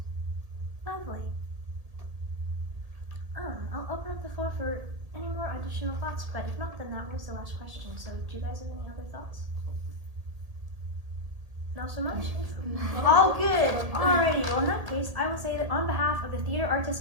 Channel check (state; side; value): late; left; 1.8 ms